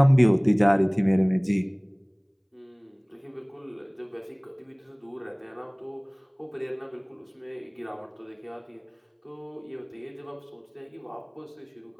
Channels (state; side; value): identical; both; correlation 1.00